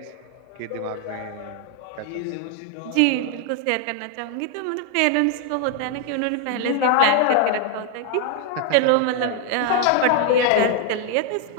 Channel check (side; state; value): both; different; correlation 0.00